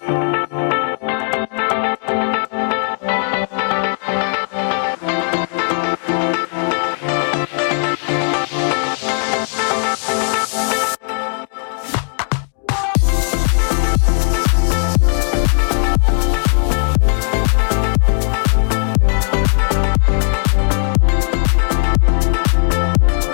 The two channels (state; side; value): silent; right; 58 dB below the other